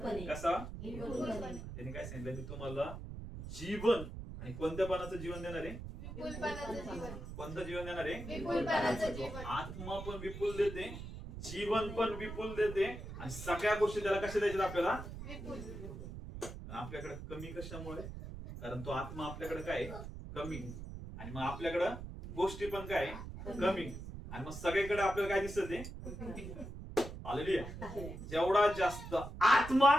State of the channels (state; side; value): noise; right; rumble, 9 dB below the sound